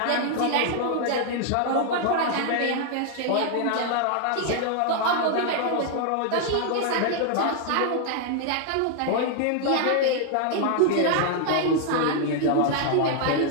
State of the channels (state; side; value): different; both; correlation 0.00